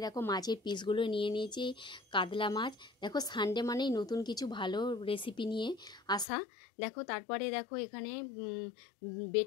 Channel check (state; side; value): drops out; right; at 6.2 s